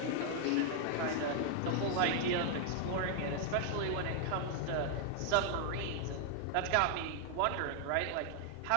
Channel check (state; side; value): different; both; correlation 0.00